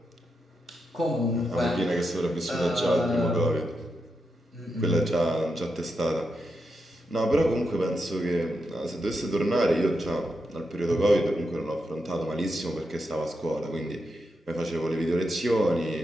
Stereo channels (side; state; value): both; normal; correlation 0.85